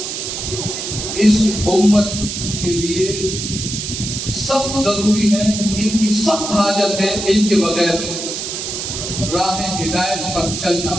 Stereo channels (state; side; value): noise; right; hiss, 5 dB below the sound